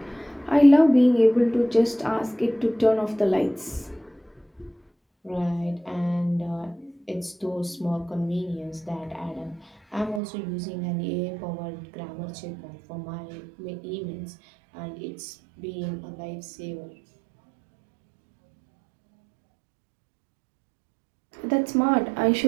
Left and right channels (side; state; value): left; drops out; at 10.2 s